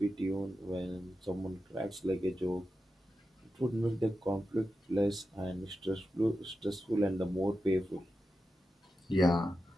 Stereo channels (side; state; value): both; normal; correlation 0.90